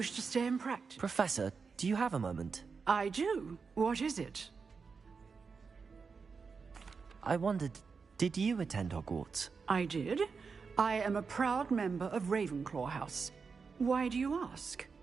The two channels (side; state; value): left; quieter; 5.2 dB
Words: to stay in practice. Professor, do you have a moment? I do. What is it? I wondered, did you attend Hogwarts? I did. I am a proud member of Ravenclaw House. Why do you ask?